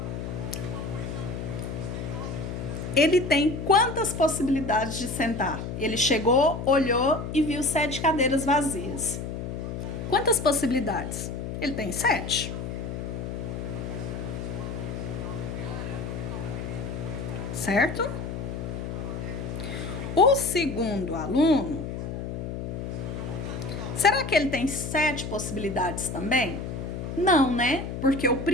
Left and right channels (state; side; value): noise; left; hum, 5 dB below the sound